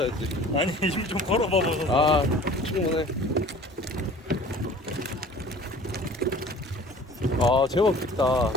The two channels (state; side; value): normal; both; correlation 0.46